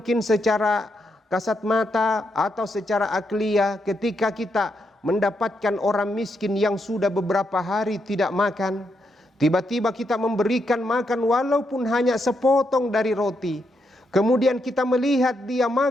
secara kasat mata atau secara akliyah ketika kita mendapatkan orang miskin yang sudah beberapa hari tidak makan. Tiba-tiba kita memberikan makan walaupun hanya sepotong dari roti. Kemudian kita melihat dia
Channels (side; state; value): both; normal; correlation 0.81